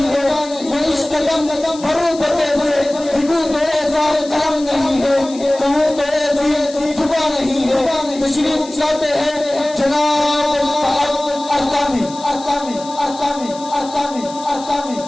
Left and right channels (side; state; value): left; noise; hiss, 17 dB below the sound